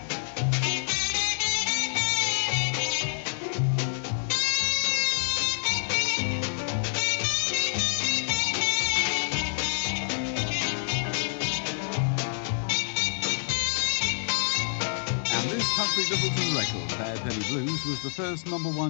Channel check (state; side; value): silent; right; digital silence